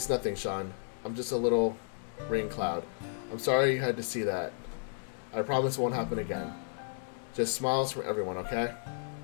nothing, Sean. I'm just a little rain cloud. I'm sorry you had to see that. I promise it won't happen again. Just smiles from everyone, okay?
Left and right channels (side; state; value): right; silent; digital silence